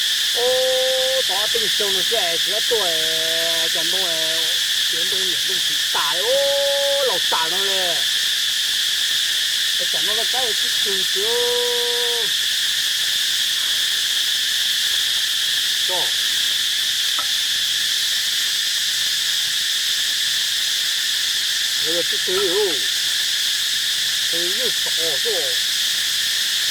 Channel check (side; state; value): both; identical; correlation 1.00